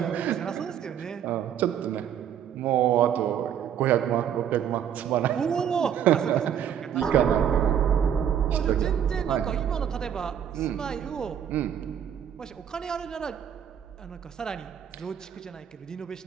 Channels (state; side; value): quieter; left; 9.1 dB